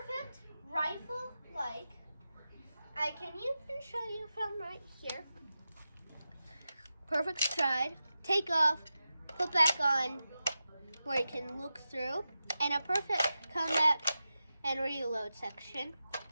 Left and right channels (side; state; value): both; inverted; correlation -0.92